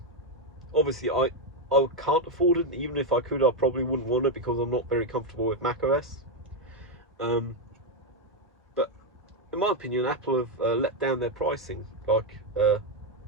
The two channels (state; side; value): normal; both; correlation 0.03